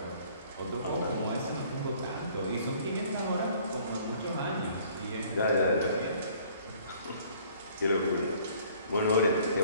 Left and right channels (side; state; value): both; inverted; correlation -0.56